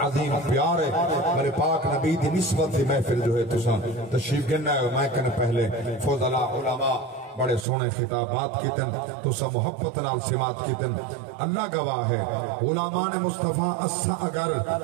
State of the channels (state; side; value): drops out; left; at 7.7 s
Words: عظیم پیار ہے. میرے پاک نبی دی نسبت دی محفل جو ہے تشریف گننا ہے. میں کہنے پہلے فضلاء علماء بڑے سونے خطابات کیتن تو سا محبت نال سمات کیتن. اللہ گواہ ہے علماء نے مصطفیٰ اسا اگر